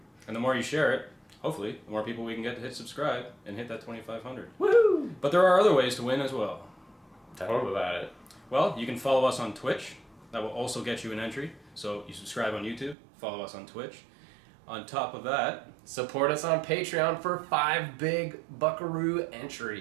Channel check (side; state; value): left; drops out; at 13.0 s